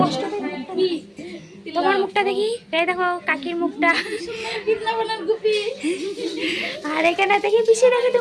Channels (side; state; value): both; identical; correlation 1.00